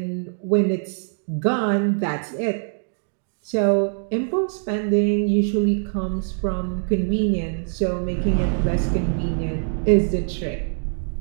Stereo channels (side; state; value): left; silent; digital silence